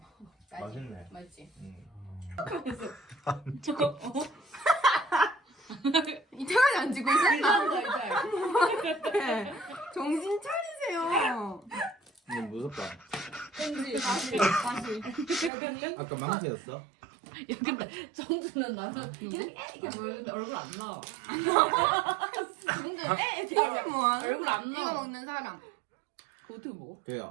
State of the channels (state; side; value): drops out; left; at 15.5 s